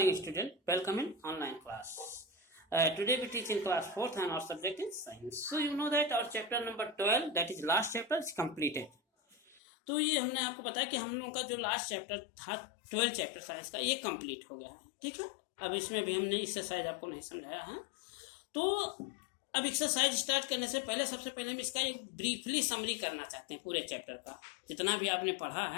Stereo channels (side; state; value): right; drops out; at 9.6 s